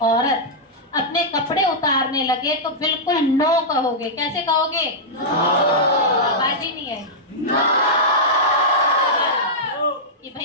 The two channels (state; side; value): normal; both; correlation -0.09